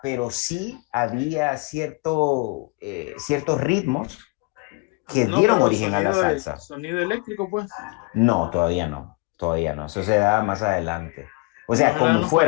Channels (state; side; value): quieter; right; 28.1 dB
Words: pero sí había ciertos ritmos que No, dieron pero origen a la salsa. sonido eléctrico, pues. No, todavía no. Eso se da más adelante. O sea, Más allá de con los